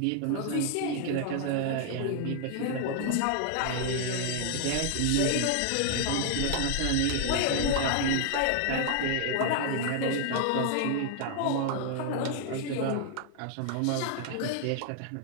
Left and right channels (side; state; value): both; different; correlation 0.00